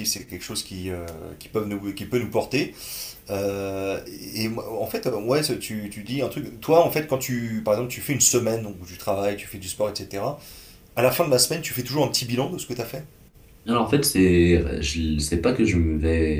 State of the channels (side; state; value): both; identical; correlation 1.00